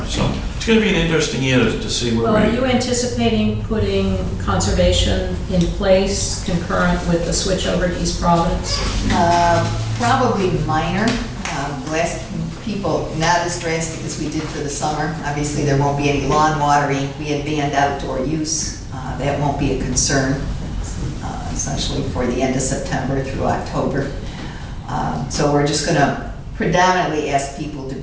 So it's going to be an interesting year to see where Well, are you anticipating putting conservation in place concurrent with the switch over to East Providence? Probably minor. Last people, not as drastic as we did for the summer. Obviously, there won't be any lawn watering. We had banned outdoor use. That won't be a concern, essentially for the end of September through October. So we're just going to predominantly ask people to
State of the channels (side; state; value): both; identical; correlation 1.00